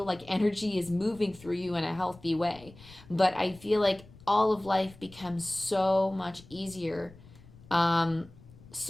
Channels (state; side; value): noise; left; rumble, 22 dB below the sound